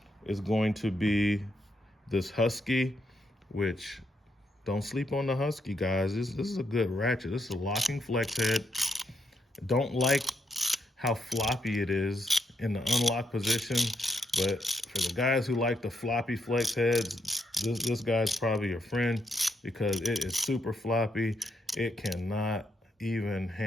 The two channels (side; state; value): both; normal; correlation 0.78